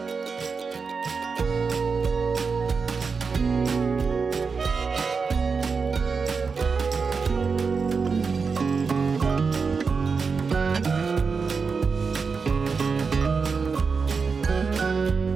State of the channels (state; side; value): quieter; left; 5.1 dB